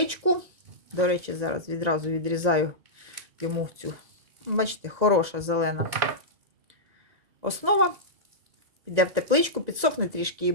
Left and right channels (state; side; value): late; left; 2.0 ms